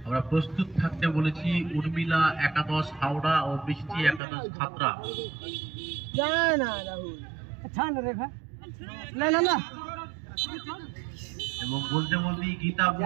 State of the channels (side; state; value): left; drops out; at 4.2 s